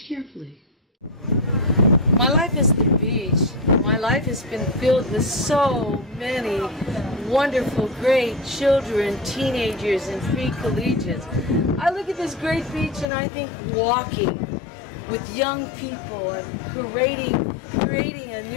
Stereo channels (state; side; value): drops out; right; at 13.1 s